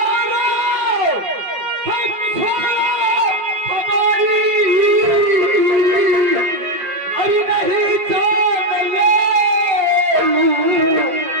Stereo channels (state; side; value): late; left; 5.1 ms